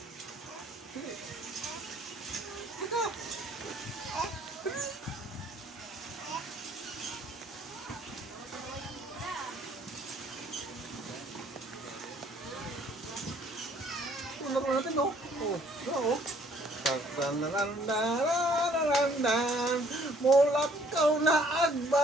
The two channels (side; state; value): both; normal; correlation 0.61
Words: Ito. Laro natin, no? Oo. Tanananananananan, mulak kau na